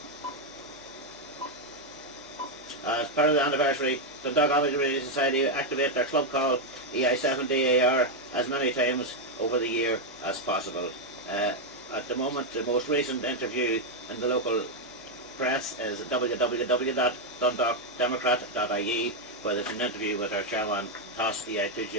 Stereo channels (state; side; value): normal; both; correlation 0.01